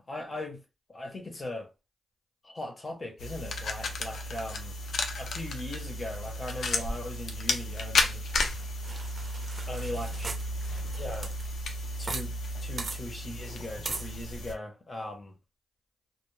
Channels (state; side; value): normal; both; correlation 0.76